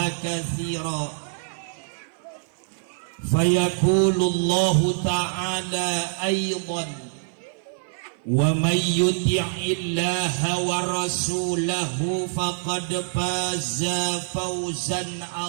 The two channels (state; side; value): silent; left; 55 dB below the other